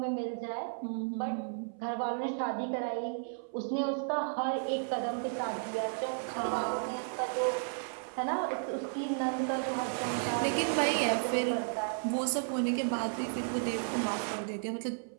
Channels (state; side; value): silent; left; 55 dB below the other